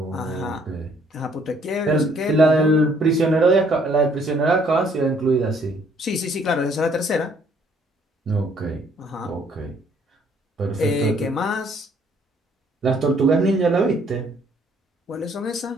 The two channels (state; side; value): normal; both; correlation 0.64